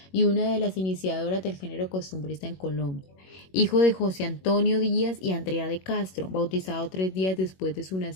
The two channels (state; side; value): late; right; 21 ms